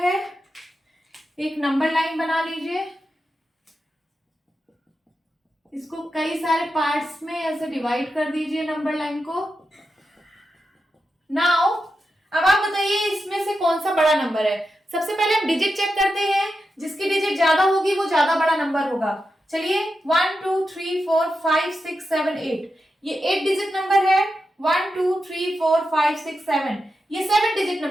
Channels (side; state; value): both; normal; correlation 0.88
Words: एक नंबर लाइन बना लीजिए, इसको कई सारे पार्ट्स में ऐसे डिवाइड कर दीजिए नंबर लाइन को। नाउ अब आप बताइए इसमें से कौन सा बड़ा नंबर है। सबसे पहले हम डिजिट चेक करते हैं, जिसकी डिजिट ज्यादा होगी वो ज्यादा बड़ा नंबर होगा। चलिए 1 2 3 4 5 6 7 8, ये 8 डिजिट नंबर है। 1 2 3 4 5 6 7, ये 7 डिजिट